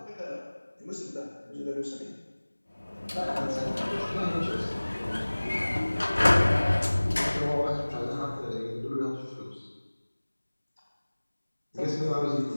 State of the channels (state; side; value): inverted; both; correlation -1.00